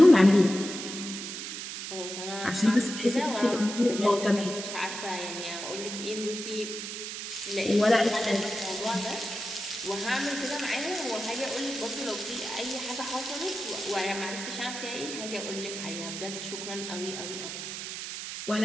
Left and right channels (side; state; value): right; noise; hiss, 7 dB below the sound